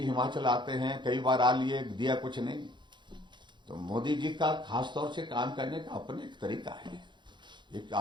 हिमाचल आते हैं, कई बार आ लिए, दिया कुछ नहीं। तो मोदी जी का खासतौर से काम करने का अपने एक तरीका है, एक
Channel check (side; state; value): left; late; 0.23 ms